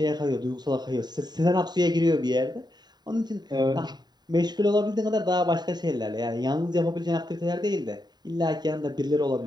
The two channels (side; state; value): left; late; 0.20 ms